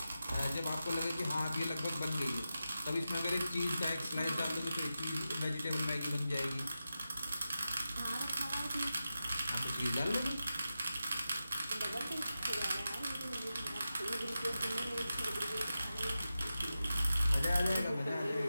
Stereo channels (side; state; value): both; inverted; correlation -0.92